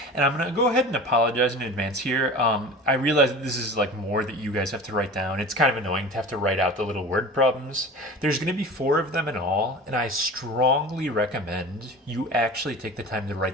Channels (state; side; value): normal; both; correlation 0.37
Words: And I'm going to go ahead and apologize in advance here. I realize that this is like more that you guys have to write down. It's kind of annoying to have to write out the little word problems. There's going to be 4 of them in all, and I strongly recommend you actually take the time to